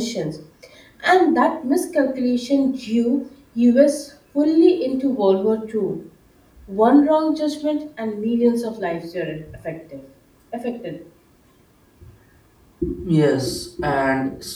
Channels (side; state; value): both; identical; correlation 1.00